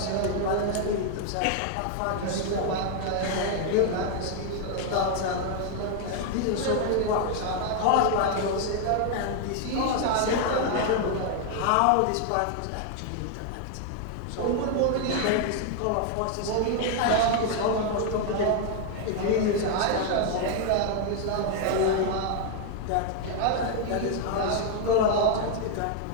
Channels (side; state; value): both; different; correlation 0.00